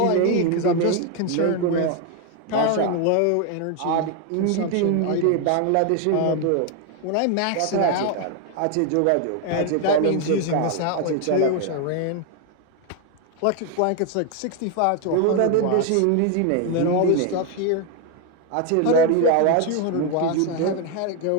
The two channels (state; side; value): different; both; correlation 0.01